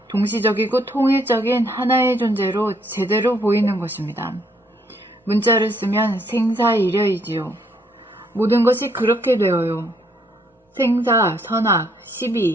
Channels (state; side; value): normal; both; correlation 0.69